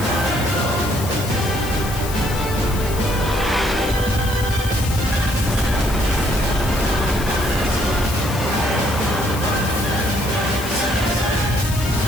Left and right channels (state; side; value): noise; left; hiss, 10 dB below the sound